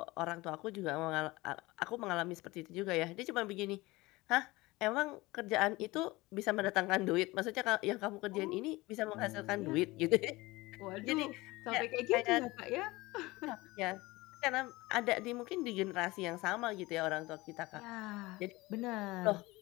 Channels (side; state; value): right; quieter; 21.0 dB